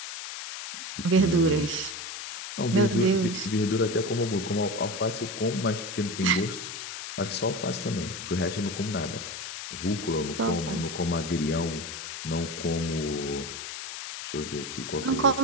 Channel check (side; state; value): left; noise; hiss, 8 dB below the sound